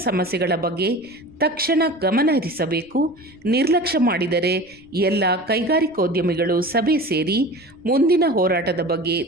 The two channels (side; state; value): right; noise; rumble, 29 dB below the sound